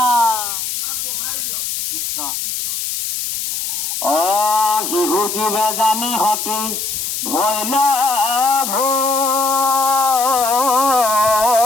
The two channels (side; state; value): left; noise; hiss, 3 dB below the sound